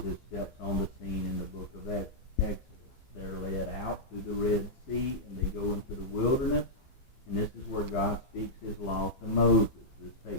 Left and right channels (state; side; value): late; right; 15 ms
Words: steps on the scene in the book of Exodus. They're led out through the Red Sea, and they go into the wilderness, and this is where God speaks his law to Moses. This